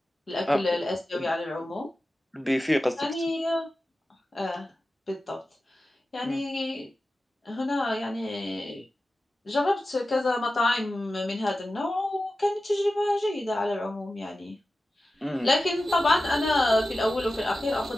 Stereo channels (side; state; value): both; normal; correlation 0.94